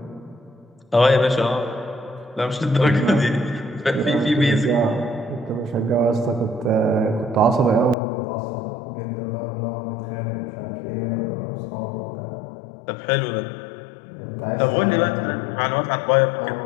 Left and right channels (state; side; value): drops out; right; at 8.0 s